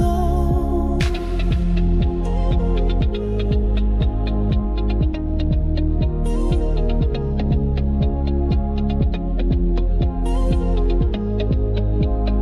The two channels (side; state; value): both; identical; correlation 1.00